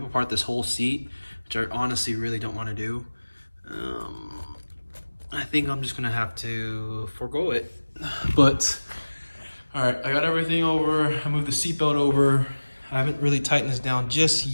apart this whole seat, which I honestly really don't want to do, I think I'm just gonna have to forego it. But all right, I got everything over. I moved the seatbelt over. I haven't really tightened this down just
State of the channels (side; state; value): both; inverted; correlation -1.00